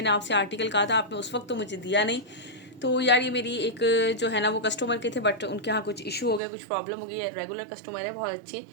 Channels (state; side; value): drops out; left; at 6.4 s